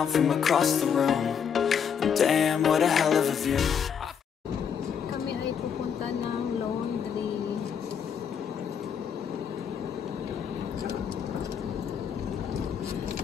from across the room. And damn, what a hell of a view. Kami ay pupunta ng laundry.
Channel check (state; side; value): quieter; right; 7.5 dB